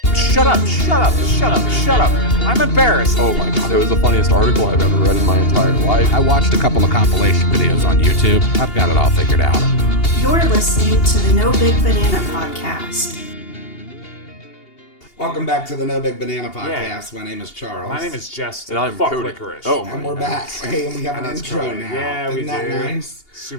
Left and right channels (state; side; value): late; right; 2.8 ms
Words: Shut up! Shut up! Shut up! Shut up! I'm embarrassed. Oh my god, it was the funniest article I've ever read in my entire life. I watched a couple of compilation videos on YouTube. I've got it all figured out. You're listening to the No Big Banana Podcast. Welcome back to the No Big Banana Podcast. Yeah. My name is Charles. My name is Justin. And I'm Fuck Cody. licorice. Oh, And we're back. Hey, and we have an That's intro Cody. now. Yeah, we Isn't that do. nice?